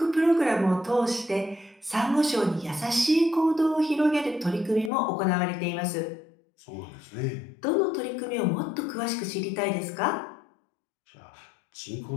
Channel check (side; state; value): right; drops out; at 4.9 s